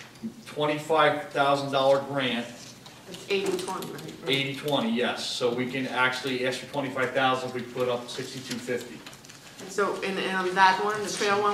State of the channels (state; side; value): identical; both; correlation 1.00